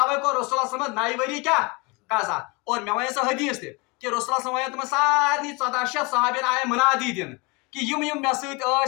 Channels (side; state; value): right; quieter; 27.9 dB